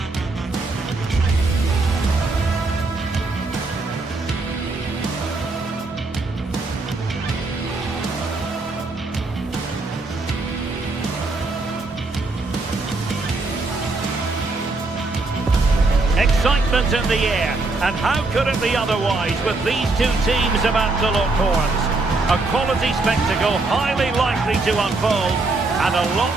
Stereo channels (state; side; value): quieter; left; 3.4 dB